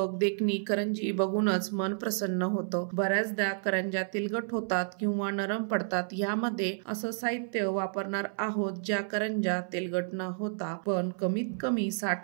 देखणी करंजी बघूनच मन प्रसन्न होतं। बऱ्याचदा करंज्या तेलकट होतात किंवा नरम पडतात। यामध्ये असं साहित्य वापरणार आहोत ज्या करंज्या तेलकट न होता पण कमीत कमी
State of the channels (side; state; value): left; silent; 57 dB below the other